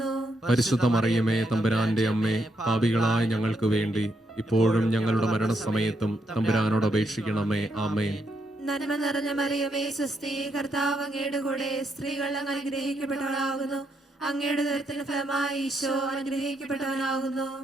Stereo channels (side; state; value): both; normal; correlation 0.78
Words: പരിശുദ്ധ മറിയമേ തമ്പുരാന്റെ അമ്മേ, പാപികളായ ഞങ്ങൾക്ക് വേണ്ടി ഇപ്പോഴും ഞങ്ങളുടെ മരണസമയത്തും തമ്പുരാനോട് അപേക്ഷിക്കണമേ. ആമേൻ. നന്മ നിറഞ്ഞ മറിയമേ സ്വസ്തി, കർത്താവ് അങ്ങയുടെ കൂടെ സ്ത്രീകൾ അങ്ങ് അനുഗ്രഹിക്കപ്പെട്ടവളാകുന്നു. അങ്ങയുടെ ഉദരത്തിന് ഫലമായി ഈശോ അനുഗ്രഹിക്കപ്പെട്ടവനാകുന്നു.